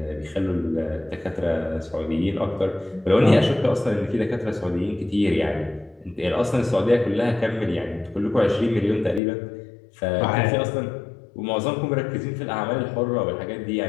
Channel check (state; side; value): drops out; right; at 9.2 s